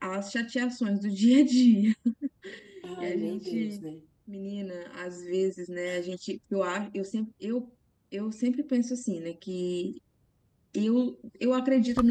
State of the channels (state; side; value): identical; both; correlation 1.00